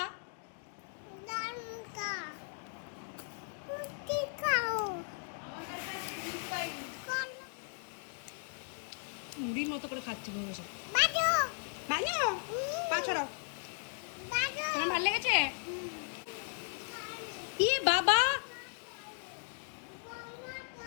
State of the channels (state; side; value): silent; right; 53 dB below the other